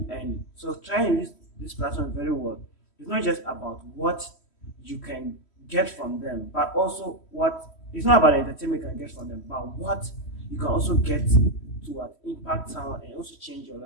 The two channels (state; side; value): late; right; 3.1 ms